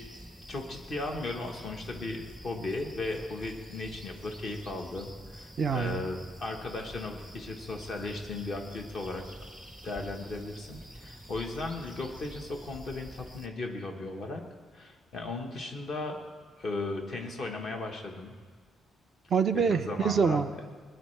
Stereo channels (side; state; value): both; normal; correlation 0.70